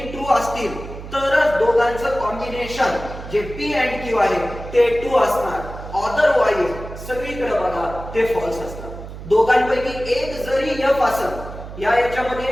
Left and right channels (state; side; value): noise; right; hum, 12 dB below the sound